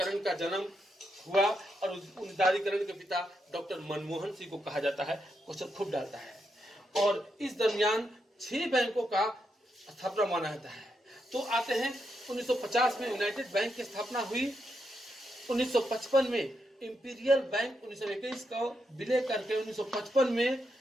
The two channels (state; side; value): normal; both; correlation 0.83